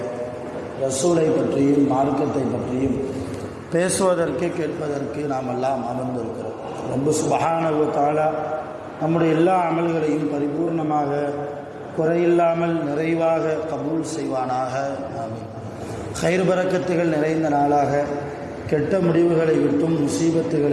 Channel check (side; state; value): both; identical; correlation 1.00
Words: ரசூலை பற்றியும் மார்க்கத்தை பற்றியும் பேசுவதற்கு கேட்பதற்கு நாம் எல்லாம் அமர்ந்திருக்கிறோம். ரப்பு சுப்ஹானஹு வ தஆலா நம்முடைய எல்லா அமல்களையும் பரிபூர்ணமாக குறையில்லாமல் நிறைவாக கபூல் செய்வானாக. ஆமீன். கைர் பரக்கத்துகள் நிறைந்த நாளாக, கெட்ட முடிவுகளை விட்டும்